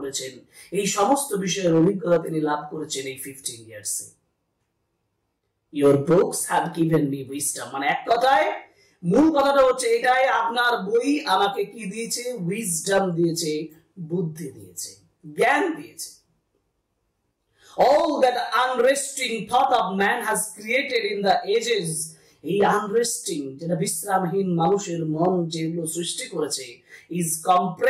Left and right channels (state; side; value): identical; both; correlation 1.00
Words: এই সমস্ত বিষয়ের অভিজ্ঞতা তিনি লাভ করেছেন এই 15 ইয়ার্সে। your books have given me wisdom, মানে এক কথায় মূল কথাটা হচ্ছে এটাই, আপনার বই আমাকে কি দিয়েছে? উইজডম দিয়েছে, বুদ্ধি দিয়েছে, জ্ঞান দিয়েছে। all that unresting thought of man has created in the ages, এই unresting যেটা বিশ্রামহীন মানুষের মন যেগুলো সৃষ্টি করেছে, is